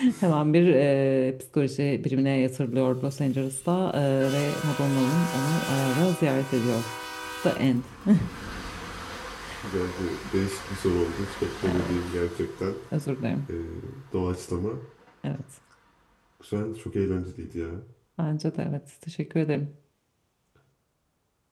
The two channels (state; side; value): identical; both; correlation 1.00